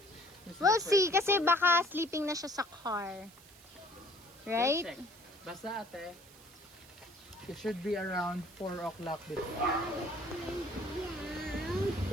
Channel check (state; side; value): noise; right; hiss, 23 dB below the sound